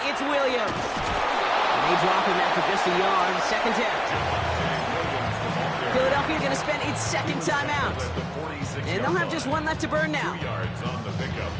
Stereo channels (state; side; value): identical; both; correlation 1.00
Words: it's Williams. And they drop him after just a yard. Second down. Philadelphia going to spend its second timeout. And they'll have just one left to burn now. 2 yards on the pickup.